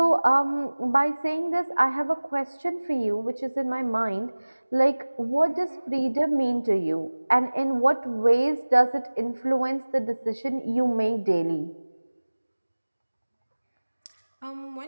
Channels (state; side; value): inverted; both; correlation -1.00